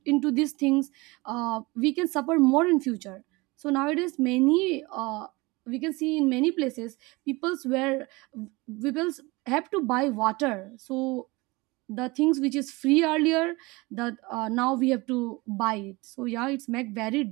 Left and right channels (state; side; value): quieter; left; 23.7 dB